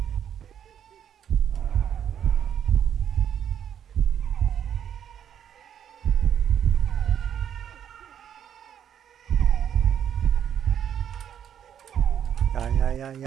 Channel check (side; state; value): left; quieter; 9.1 dB